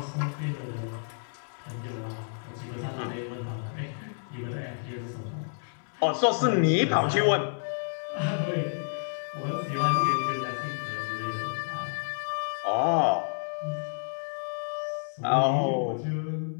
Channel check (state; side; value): silent; right; 58 dB below the other